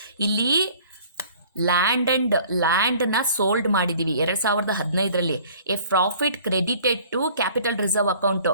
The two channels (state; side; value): inverted; both; correlation -0.52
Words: ಇಲ್ಲಿ ಲ್ಯಾಂಡ್ನ ಸೋಲ್ಡ್ ಮಾಡಿದ್ದೀವಿ 2015ರಲ್ಲಿ. A profit credited to capital reserve account,